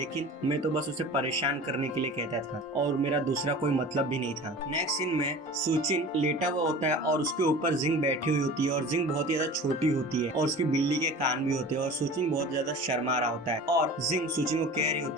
मैं तो बस उसे परेशान करने के लिए कहता था और मेरा दूसरा कोई मतलब भी नहीं था। नेक्स्ट सीन में सुचिन लेटा हुआ होता है और उसके ऊपर जिंग बैठी हुई होती है और जिंग बहुत ही ज्यादा छोटी होती है और उसकी बिल्ली के कान भी होते हैं और सुचिन बहुत ज्यादा शर्मा रहा होता है और जिंग सुचिन को कह रही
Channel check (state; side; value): normal; both; correlation 0.38